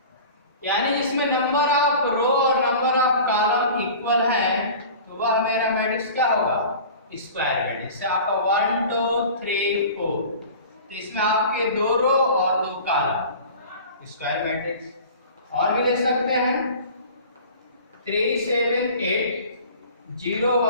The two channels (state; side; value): inverted; both; correlation -0.40